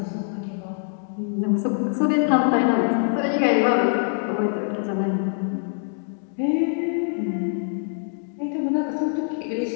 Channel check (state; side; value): silent; right; 62 dB below the other